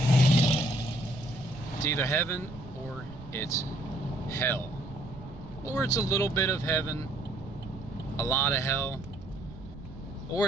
it's either heaven or it's hell. Or it's a little bit of heaven, a lot of hell.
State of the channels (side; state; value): right; noise; rumble, 15 dB below the sound